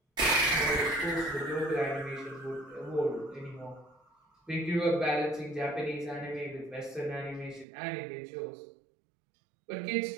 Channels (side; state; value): left; drops out; at 7.7 s